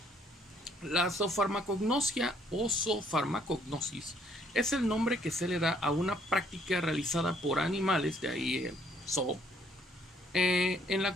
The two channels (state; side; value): normal; both; correlation 0.65